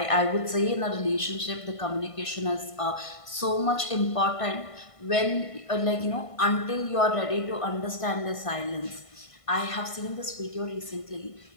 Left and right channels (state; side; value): late; right; 1.5 ms